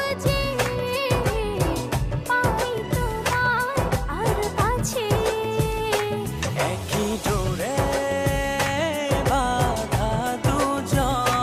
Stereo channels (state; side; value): identical; both; correlation 1.00